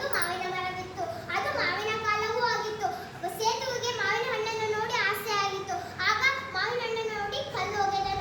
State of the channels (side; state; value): both; identical; correlation 1.00